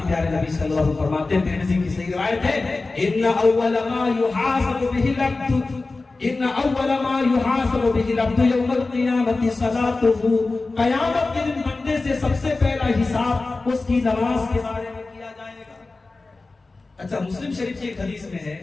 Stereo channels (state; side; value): quieter; right; 3.5 dB